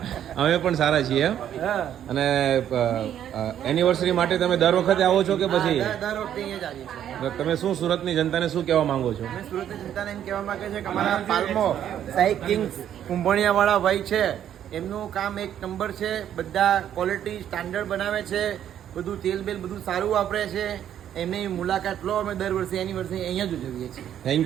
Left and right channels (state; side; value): quieter; left; 10.3 dB